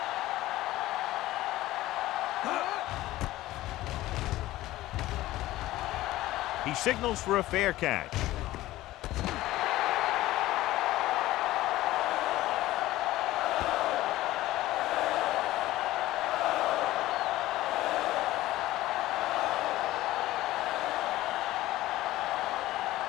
He signals for a fair catch.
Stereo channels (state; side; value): quieter; right; 16.3 dB